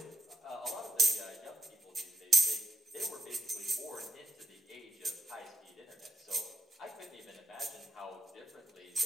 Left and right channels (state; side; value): normal; both; correlation 0.81